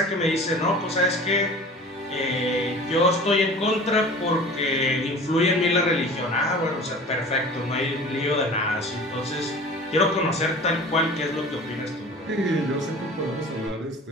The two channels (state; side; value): normal; both; correlation 0.41